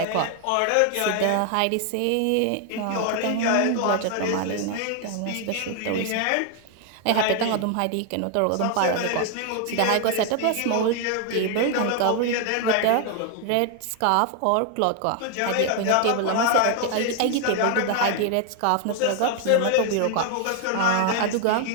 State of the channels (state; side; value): different; both; correlation 0.00